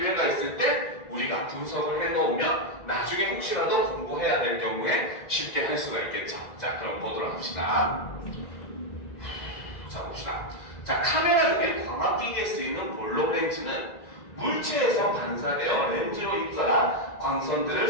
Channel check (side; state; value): right; late; 2.0 ms